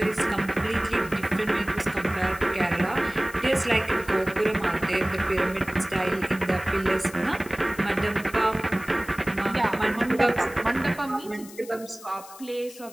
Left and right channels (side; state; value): left; noise; hiss, 18 dB below the sound